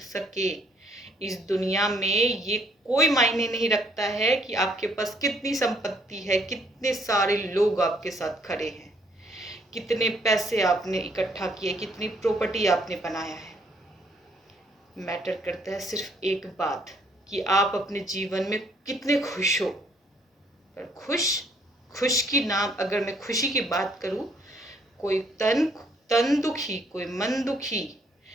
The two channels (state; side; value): normal; both; correlation 0.65